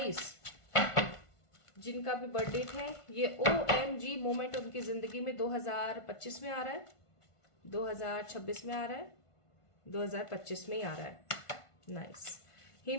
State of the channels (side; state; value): right; late; 1.5 ms